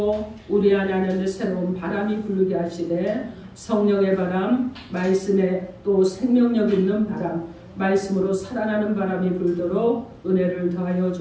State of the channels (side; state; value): both; identical; correlation 1.00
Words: 우리 안에 새로운 바람이 불게 하시되 성령의 바람, 말씀에 또 생명력 있는 바람, 말씀으로 살아나는 바람이 불도록 은혜를 더하여